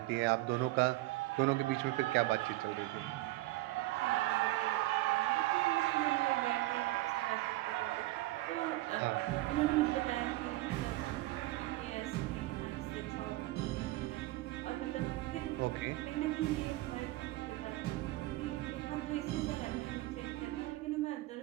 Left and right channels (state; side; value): quieter; left; 18.4 dB